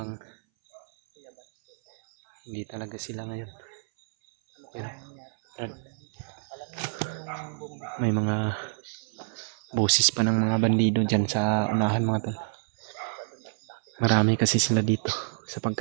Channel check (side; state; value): left; silent; 59 dB below the other